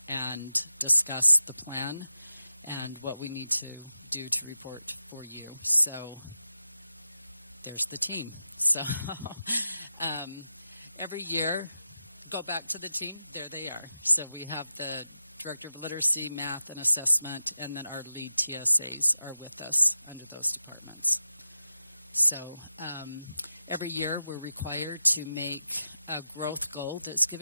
and discuss the plan and what we need to do to report for you. So there's the team. So every year, go back to the team. There they are. So we have the Director of Literacy, Math, and Assessment, and then our lead TSAs are with us under those departments. So every year we're required to make a growth goal that's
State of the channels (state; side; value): inverted; both; correlation -0.91